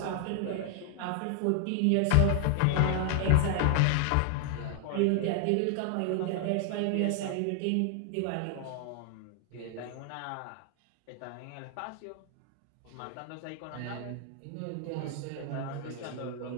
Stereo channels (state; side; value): different; both; correlation 0.00